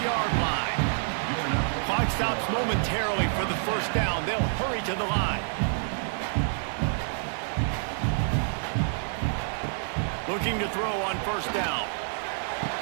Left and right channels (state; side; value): silent; left; digital silence